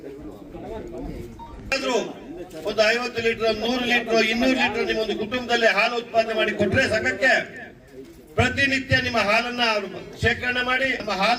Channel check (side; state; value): both; identical; correlation 1.00